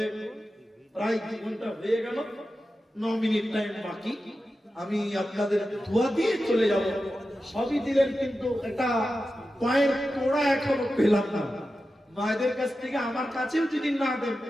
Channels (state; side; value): normal; both; correlation 0.92